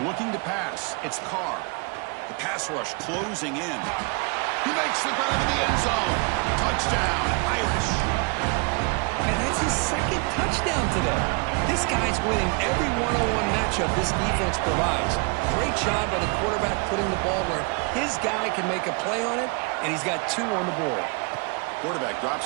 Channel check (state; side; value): quieter; left; 32.0 dB